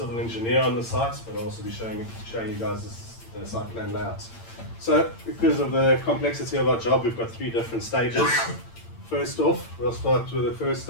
engineer on the site, but I'll also be showing you guys the site plan layout. So, because of the complexity of our job, we've got three different stages. First off, we'll start with the first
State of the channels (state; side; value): late; right; 8.8 ms